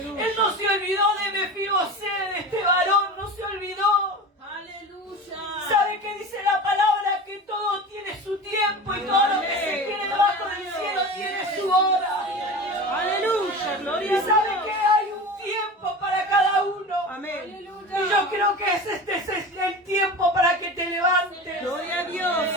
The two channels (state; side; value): normal; both; correlation 0.31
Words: Él no se olvidó de Mefibosé, de este varón, no se olvidó. Aleluya. ¿Sabe qué dice la palabra? Que todo tiene su tiempo y todo lo que se quiere debajo del cielo tiene su hora. Aleluya, Y gloria a sabe Dios. que hay un tiempo para cada uno. Amén. Y yo creo que este es el tiempo para que te levantes. Gloria a Dios,